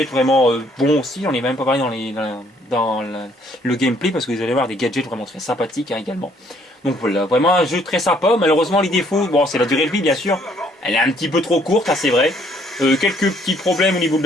vraiment bons aussi. On est même pas parlé dans le gameplay parce que vous allez voir des gadgets vraiment très sympathiques hein, également. Donc voilà, vraiment un jeu très sympa. Malheureusement les défauts, bon c'est la durée de vie bien sûr, elle est un petit peu trop courte, hein, c'est vrai. Quelques petits problèmes au niveau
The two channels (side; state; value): both; normal; correlation 0.65